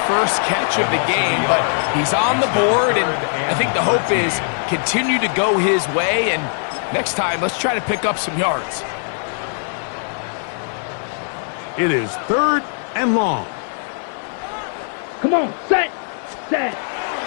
first catch of the game, but he's on the board, and I think the hope is continue to go his way, and next time, let's try to pick up some yards. It is 3rd and long. Come on, set. The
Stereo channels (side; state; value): right; silent; 66 dB below the other